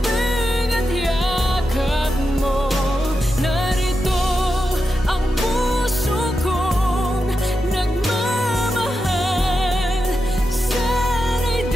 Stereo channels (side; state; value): both; normal; correlation 0.89